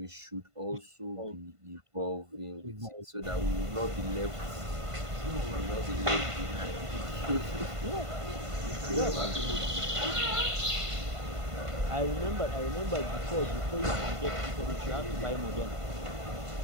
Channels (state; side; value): late; left; 1.5 ms